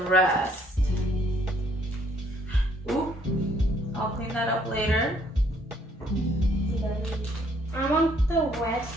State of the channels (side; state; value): both; normal; correlation 0.65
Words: rest. Ooh, I'll clean that up later. I want the rest